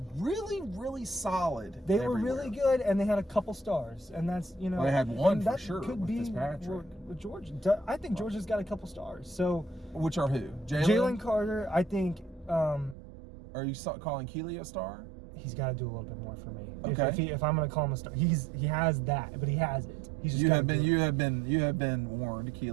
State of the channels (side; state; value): left; drops out; at 13.0 s